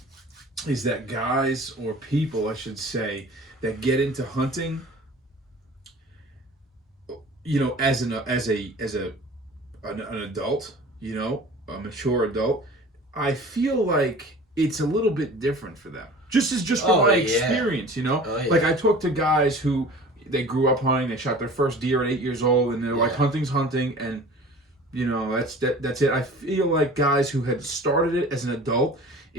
is that guys, or people I should say, that get into hunting, you know, as an adult, you know, a mature adult, I feel like it's a little bit different for them. Just from my experience, you know. Oh, yeah. Like I talk to guys who they grew up hunting, they shot their first deer at 8 years old, and they're like, hunting's hunting, and you know, that's it. I feel like guys who had started it as an adult,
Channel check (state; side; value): normal; both; correlation 0.43